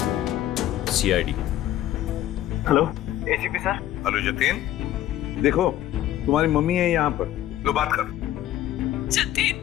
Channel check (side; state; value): right; quieter; 13.1 dB